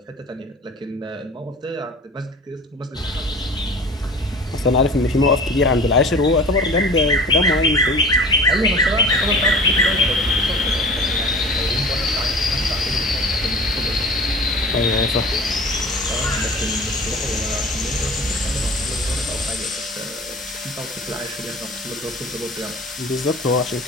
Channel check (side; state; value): both; normal; correlation 0.40